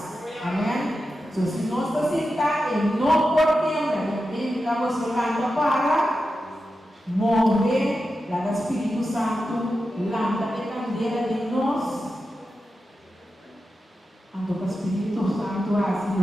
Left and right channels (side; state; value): both; normal; correlation 0.91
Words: Amém? Então, se nós estamos sentados, não podemos, ele estamos falando para morrer lá do Espírito Santo, lâmpada de candeia de nós. Então, o Espírito Santo assim